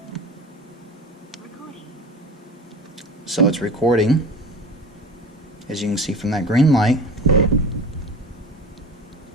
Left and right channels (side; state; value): both; normal; correlation 0.35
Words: So it's recording, as you can see from that green light.